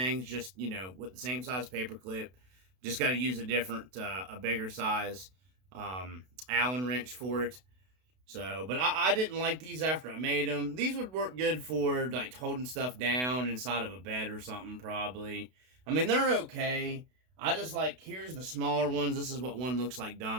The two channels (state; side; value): late; left; 32 ms